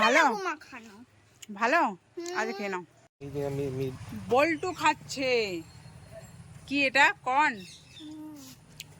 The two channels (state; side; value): identical; both; correlation 1.00